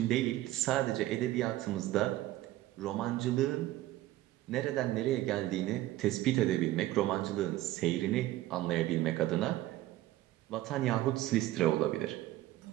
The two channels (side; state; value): left; quieter; 15.6 dB